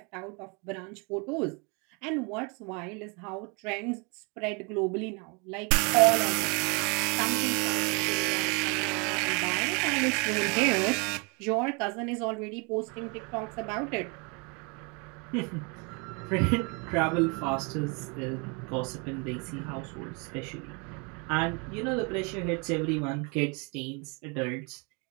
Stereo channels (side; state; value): left; quieter; 32.3 dB